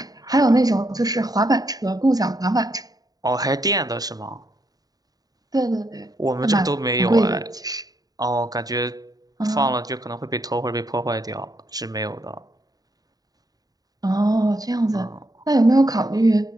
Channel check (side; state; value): left; late; 0.18 ms